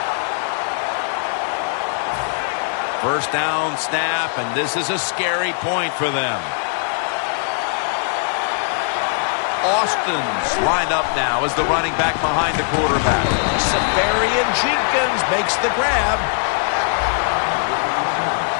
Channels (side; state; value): right; silent; 62 dB below the other